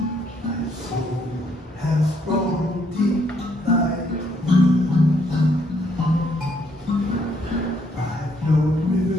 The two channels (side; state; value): both; normal; correlation 0.70